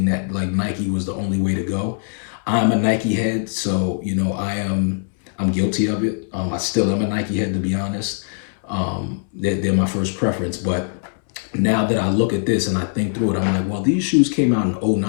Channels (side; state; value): right; silent; 63 dB below the other